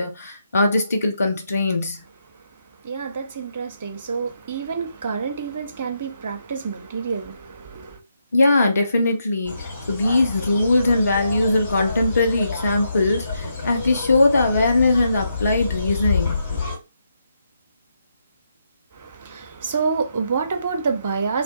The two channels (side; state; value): both; inverted; correlation -0.80